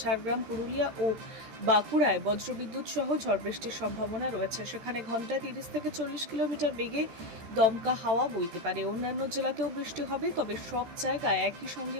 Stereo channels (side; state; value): left; late; 14 ms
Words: ঝাড়গ্রাম, পুরুলিয়া ও বাঁকুড়ায় বজ্রবিদ্যুৎ সহ ঝড় বৃষ্টির সম্ভাবনা রয়েছে। সেখানে ঘন্টায় 30 থেকে 40 কিলোমিটার বেগে দমকা হাওয়া বইতে পারে। অন্যান্য জেলাতেও বৃষ্টি হবে, তবে সব জায়গায় একই সঙ্গে